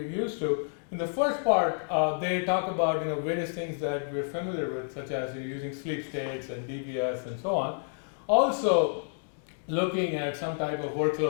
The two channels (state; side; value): silent; right; digital silence